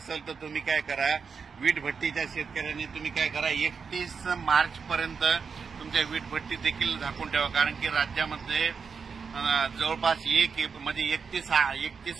तर तुम्ही काय करा, वीट भट्टीच्या शेतकऱ्यांनी तुम्ही काय करा, 31 मार्च पर्यंत तुमच्या वीट भट्टी देखील झाकून ठेवा, कारण की राज्यामध्ये जवळपास म्हणजे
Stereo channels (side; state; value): left; quieter; 5.7 dB